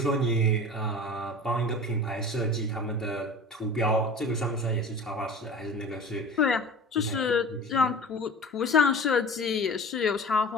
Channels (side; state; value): both; normal; correlation 0.38